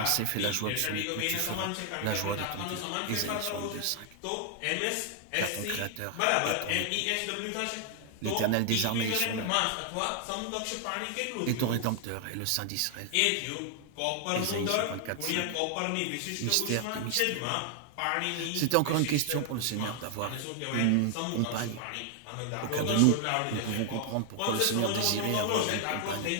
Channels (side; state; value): both; different; correlation 0.00